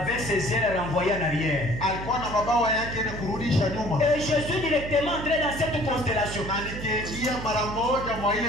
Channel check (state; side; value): noise; right; hum, 9 dB below the sound